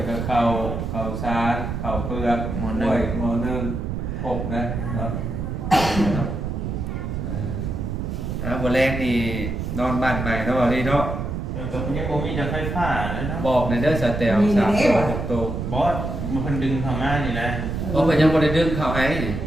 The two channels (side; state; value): right; noise; rumble, 3 dB below the sound